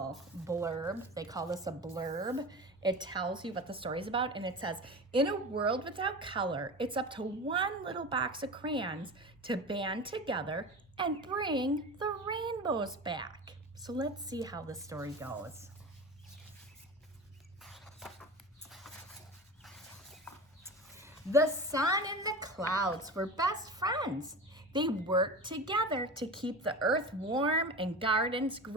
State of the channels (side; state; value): both; normal; correlation 0.30